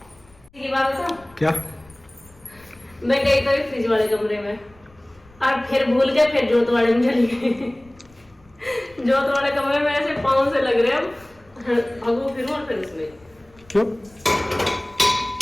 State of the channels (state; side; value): noise; left; rumble, 28 dB below the sound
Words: की बात बताऊं? क्या? मैं गई तो फ्रिज वाले कमरे में और फिर भूल के फिर जोत वाले में चली गई। जोत वाले कमरे में ऐसे पाँव से लग रहे हैं, भगो फिर और फिर उसमें क्यों?